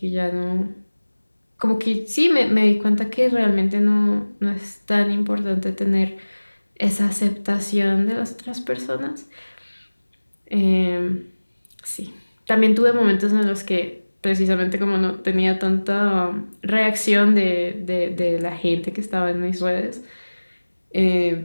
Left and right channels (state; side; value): inverted; both; correlation -1.00